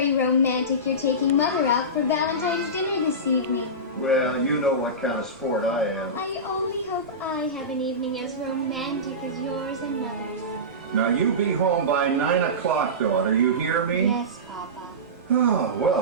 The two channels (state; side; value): normal; both; correlation -0.19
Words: romantic you're taking Mother out for Valentine's dinner this evening. Well, you know what kind of sport I am. I only hope I have an evening as romantic as yours and Mother's. Now, you be home by 9 o'clock, daughter. You hear me? Yes, Papa. Oh,